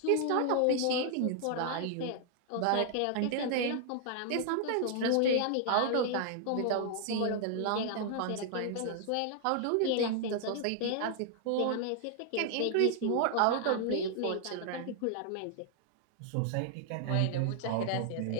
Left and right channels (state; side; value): different; both; correlation 0.00